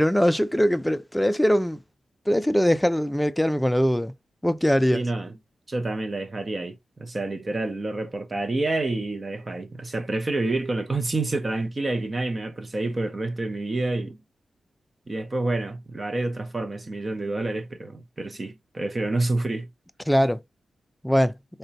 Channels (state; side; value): normal; both; correlation 0.97